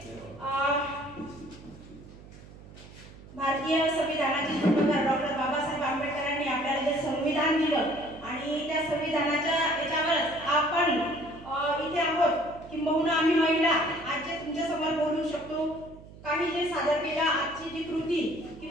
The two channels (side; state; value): right; noise; hum, 19 dB below the sound